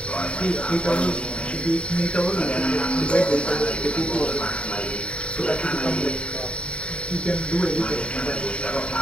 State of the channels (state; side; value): late; right; 0.059 ms